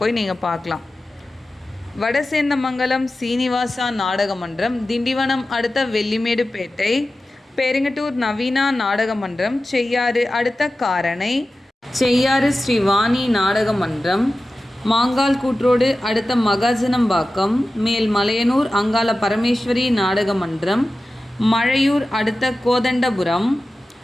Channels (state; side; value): normal; both; correlation 0.95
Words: போய் நீங்கள் பார்க்கலாம். வடசேந்தமங்கலம் சீனிவாசா நாடக மன்றம், திண்டிவனம் அடுத்த வெள்ளிமேடுபேட்டை, பெருங்கட்டூர் நவீனா நாடக மன்றம், செய்யாறு அடுத்த காரணை, செய்யாறு ஸ்ரீவாணி நாடக மன்றம், மாங்கால் கூற்றோடு அடுத்த மகாஜனம்பாக்கம், மேல் மலையனூர் அங்காள பரமேஸ்வரி நாடக மன்றம், மழையூர் அடுத்த கோதண்டபுரம்,